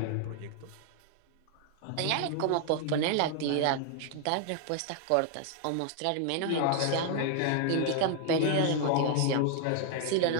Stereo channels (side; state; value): both; different; correlation 0.00